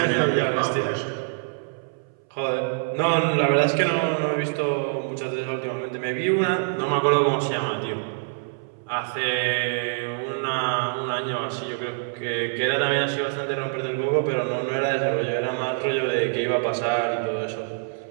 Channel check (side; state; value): left; silent; 62 dB below the other